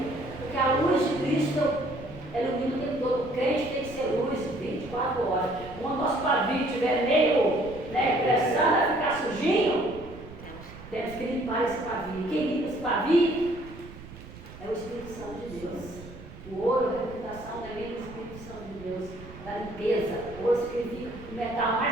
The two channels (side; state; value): right; noise; rumble, 16 dB below the sound